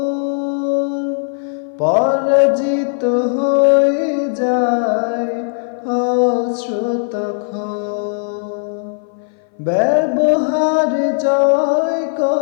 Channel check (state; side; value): silent; right; 59 dB below the other